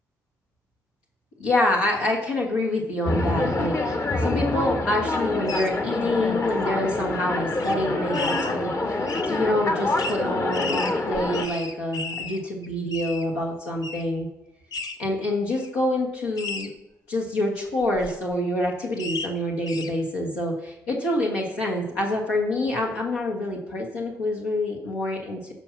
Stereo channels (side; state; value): both; normal; correlation 0.70